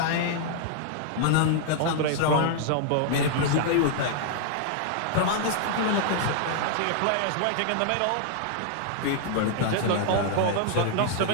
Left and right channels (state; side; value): different; both; correlation -0.01